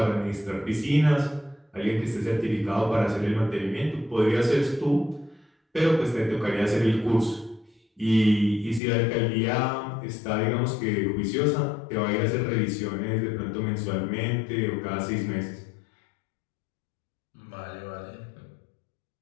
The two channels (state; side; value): drops out; right; at 8.8 s